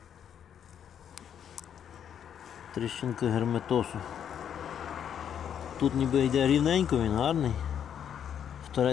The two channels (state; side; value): quieter; right; 8.8 dB